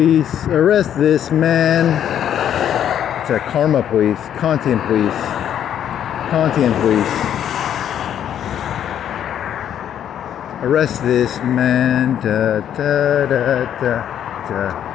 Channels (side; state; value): right; quieter; 9.9 dB